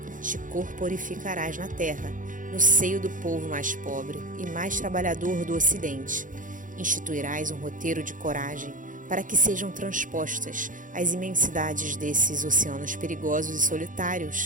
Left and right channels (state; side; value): late; left; 0.38 ms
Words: te corporificarás na terra, no seio do povo mais pobre e mais trabalhador do Ocidente. Instituirás um roteiro de coragem para que sejam transpostas as imensidades desses oceanos perigosos e